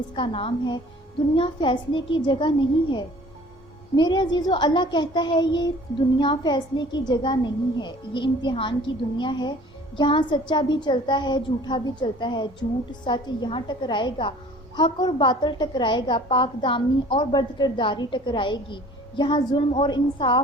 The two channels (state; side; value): normal; both; correlation 0.49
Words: کا نام ہے دنیا فیصلے کی جگہ نہیں ہے۔ میرے عزیزو، اللہ کہتا ہے یہ دنیا فیصلے کی جگہ نہیں ہے، یہ امتحان کی دنیا ہے۔ یہاں سچا بھی چلتا ہے، جھوٹا بھی چلتا ہے، جھوٹ سچ یہاں ٹکرائے گا، حق اور باطل ٹکرائے گا، پاک دامنی اور بدکرداری ٹکرائے گی، یہاں ظلم اور